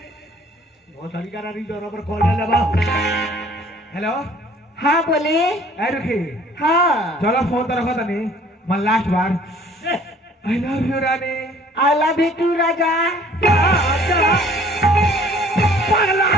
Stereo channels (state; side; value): normal; both; correlation 0.55